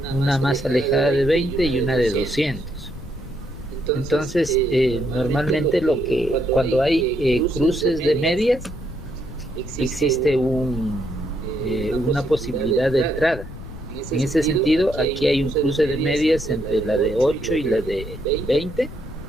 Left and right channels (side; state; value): left; noise; rumble, 13 dB below the sound